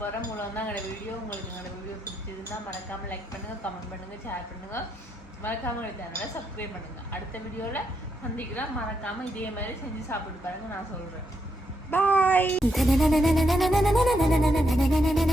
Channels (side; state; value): both; normal; correlation 0.80